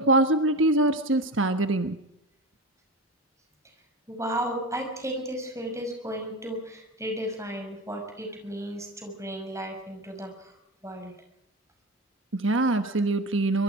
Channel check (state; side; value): normal; both; correlation 0.24